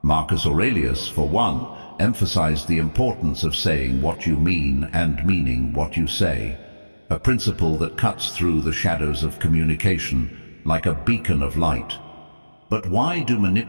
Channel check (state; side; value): inverted; both; correlation -1.00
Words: Marcus Aurelius, for one, emphasized the importance of saying what you mean and meaning what you say, a principle that cuts through the shadows of communication like a beacon of light. But why do